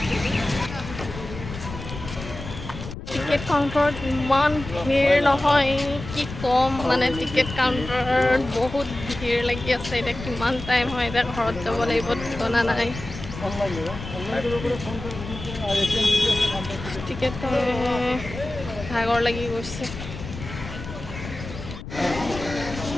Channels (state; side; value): noise; left; rumble, 10 dB below the sound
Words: টিকেট কাউণ্টাৰত ইমান ভিৰ নহয় কি ক'ম, মানে টিকেট কাউণ্টাৰত বহুত ভিৰ লাগি আছে। এতিয়া কিমান টাইম হয়, এতিয়া ঘৰত যাব লাগিব, ঠিকনা নাই। টিকেট ভাগৰ লাগি গৈছে।